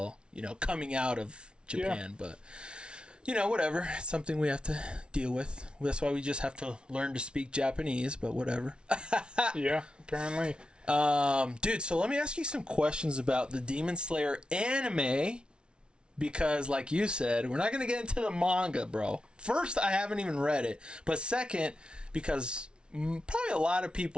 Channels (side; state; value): left; late; 0.056 ms